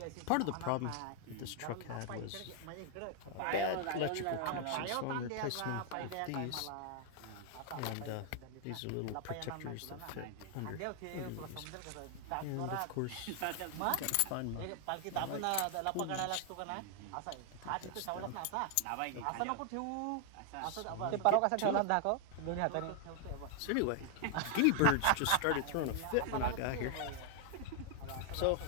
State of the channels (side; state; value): both; different; correlation 0.00